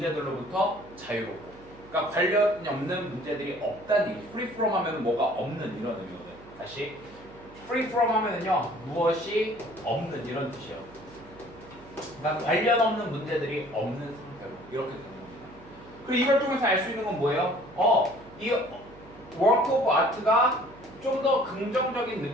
자유롭고. 그러니까 관련이 없는 문제들이 없다는 얘기. free from 하면 뭐가 없는, 이런 의미거든. 다시 free from 하면은요, 무엇이 없는, 이런 뜻이에요. 그러니까 관련 없는 문제들이 없는 상태로 이렇게 되는 겁니다. 그리고 이걸 통해서 알 수 있는 건 뭐예요? 이 work of art가 좀 더 긍정적인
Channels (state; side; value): noise; right; hum, 21 dB below the sound